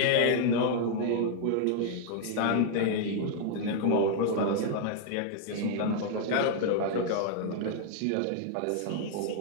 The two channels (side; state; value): both; different; correlation 0.00